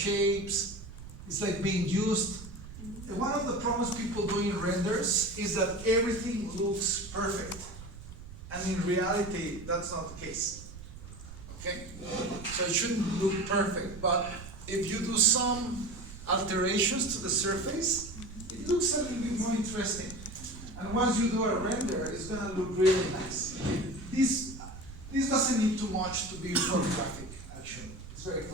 It's like being used. And one of the problems people do in renders is that everything looks perfect. And in reality, that's not the case. Okay? So it shouldn't look perfect, but if you do some alterations to the surface, it looks a little bit more interesting. And once you do a render, it's gonna look really nice. This doesn't need too much to be photographic, actually. It's very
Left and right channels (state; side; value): noise; right; rumble, 14 dB below the sound